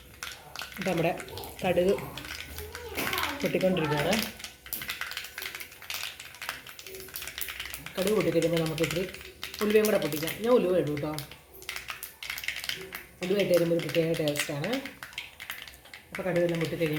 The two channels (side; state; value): both; identical; correlation 1.00